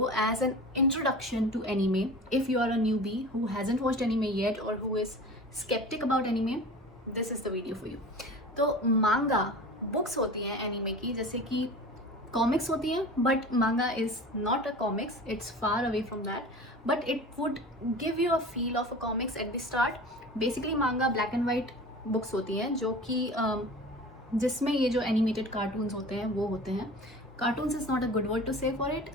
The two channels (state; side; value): normal; both; correlation 0.37